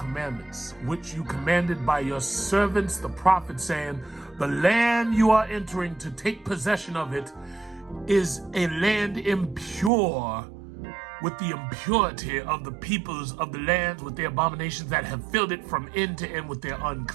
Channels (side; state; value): left; drops out; at 9.9 s